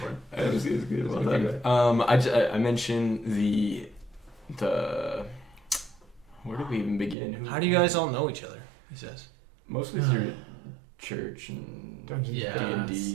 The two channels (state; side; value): drops out; left; at 7.2 s